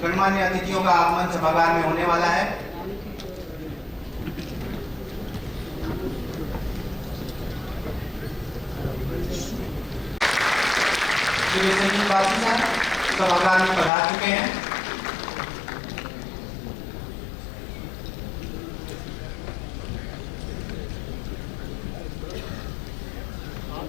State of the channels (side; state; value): right; drops out; at 13.9 s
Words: गणमान्य अतिथियों का आगमन सभागार में होने वाला है। श्री विश्वजीत बासु सर सभागार में पधार चुके हैं।